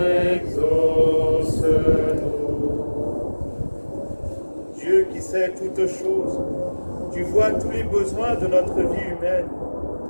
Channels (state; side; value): inverted; both; correlation -1.00